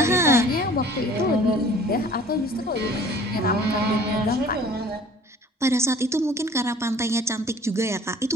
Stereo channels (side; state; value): both; normal; correlation 0.50